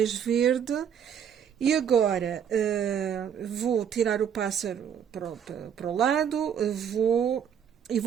verde. E agora vou tirar o pássaro para o lado,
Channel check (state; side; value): quieter; left; 8.3 dB